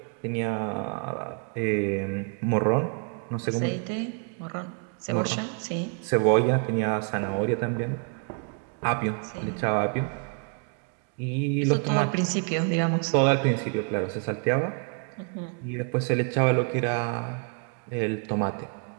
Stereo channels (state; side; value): quieter; left; 39.1 dB